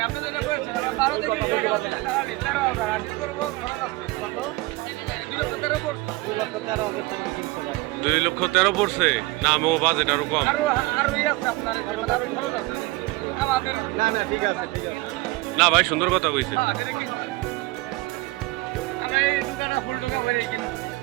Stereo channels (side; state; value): left; quieter; 21.7 dB